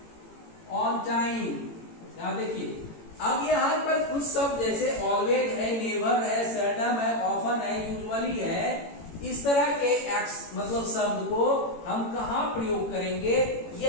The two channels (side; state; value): right; late; 18 ms